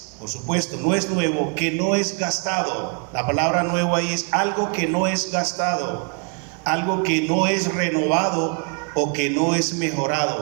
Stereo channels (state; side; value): quieter; left; 37.9 dB